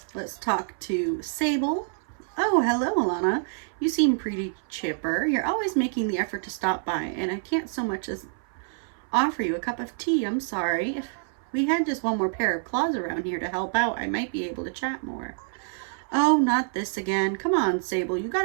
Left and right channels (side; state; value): left; silent; 57 dB below the other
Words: Let's talk to Sable. Oh, hello, Alana. You seem pretty chipper. You're always making the effort to stop by, and I can't so much as offer you a cup of tea. I'm sorry. If we had just one more pair of claws around here to help out, I might be able to chat more. Oh, not this again. Come on, Sable. You